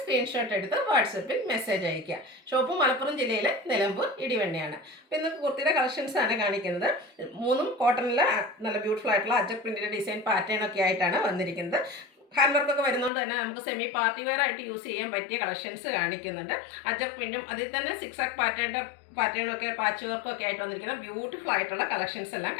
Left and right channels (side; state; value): right; drops out; at 13.1 s